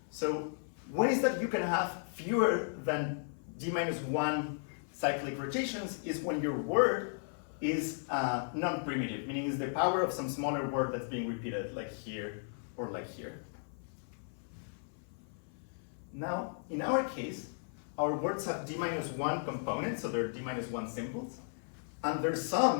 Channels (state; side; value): silent; right; 54 dB below the other